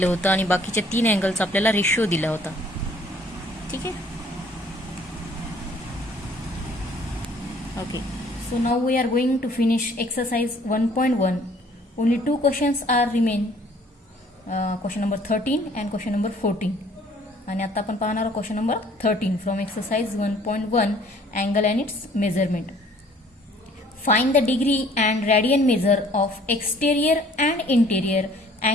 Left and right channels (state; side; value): normal; both; correlation 0.57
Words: होतं आणि बाकीच्या 3 अँगलचा आपल्याला रेशिओ दिला होता. ठीक आहे. Okay. So now we are going to finish exercise 1.1. Only 2 questions are remain. Question number 13 and question number 14. आणि आता आपण पाहणार आहोत question number 13 from exercise 1.1 angle and its measurement. Find the degree and radian measure of exterior and interior